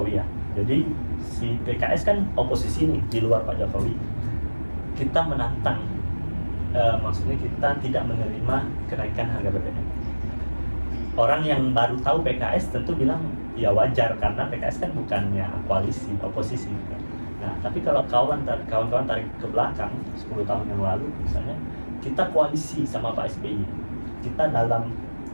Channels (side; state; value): both; inverted; correlation -1.00